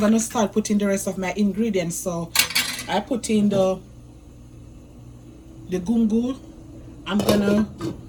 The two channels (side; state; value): both; identical; correlation 1.00